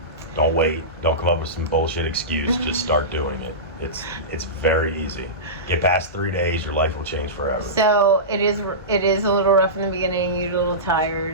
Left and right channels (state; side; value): normal; both; correlation -0.19